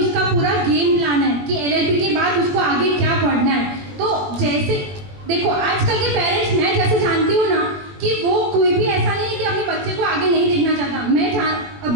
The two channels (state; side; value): late; left; 21 ms